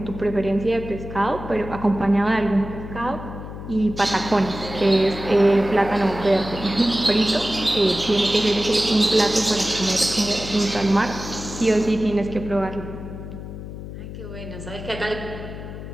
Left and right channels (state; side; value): noise; left; hum, 10 dB below the sound